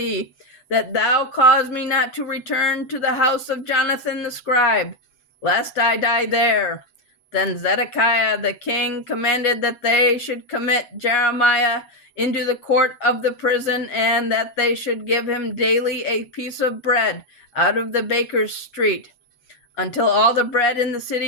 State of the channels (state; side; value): late; right; 8.4 ms